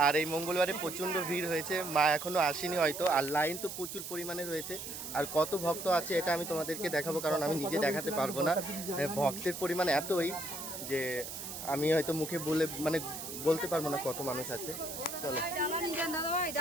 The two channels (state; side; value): noise; right; hiss, 8 dB below the sound